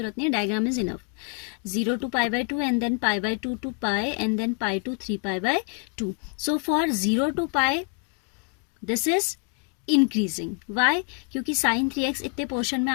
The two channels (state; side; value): quieter; right; 36.6 dB